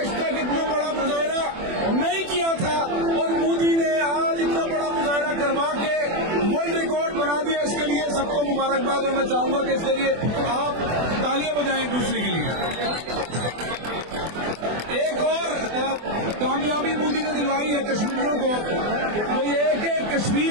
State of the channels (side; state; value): left; late; 24 ms